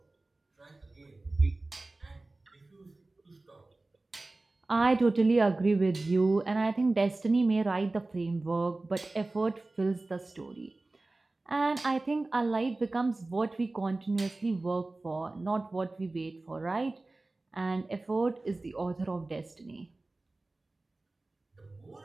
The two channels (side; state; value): left; quieter; 3.1 dB